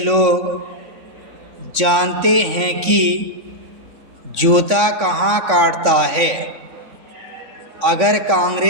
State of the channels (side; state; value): left; late; 3.5 ms